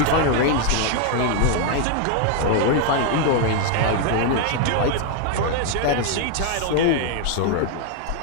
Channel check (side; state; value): both; different; correlation 0.01